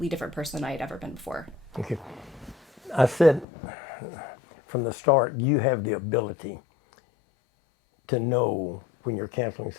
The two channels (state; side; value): drops out; right; at 3.5 s